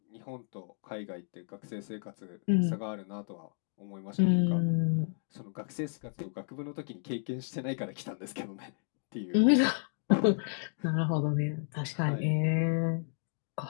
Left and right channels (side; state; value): right; silent; digital silence